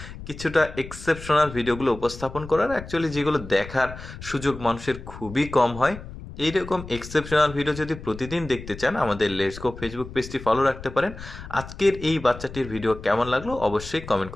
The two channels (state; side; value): noise; left; rumble, 13 dB below the sound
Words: কিছুটা এক্সেপশনাল ভিডিওগুলো উপস্থাপন করার, অ্যাকচুয়ালি যেগুলো দেখার সুযোগ মানুষের খুবই কম হয়। এইরকম এক্সেপশনাল ভিডিও যদি প্রতিদিন দেখতে চান, আমাদের লেটস গো ফেসবুক পেজটি ফলো রাখতে পারেন। আজকের এই বাচ্চাটির ভিডিও কেমন লাগলো অবশ্যই কমেন্ট